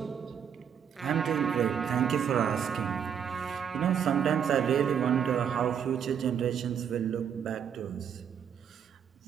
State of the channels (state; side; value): quieter; left; 8.1 dB